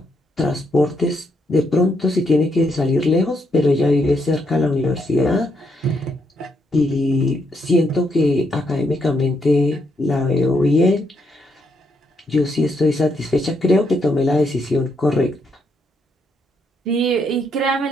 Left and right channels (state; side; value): normal; both; correlation 0.77